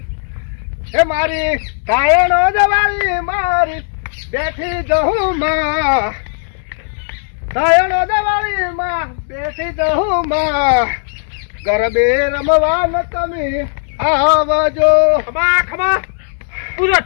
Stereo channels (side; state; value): right; silent; digital silence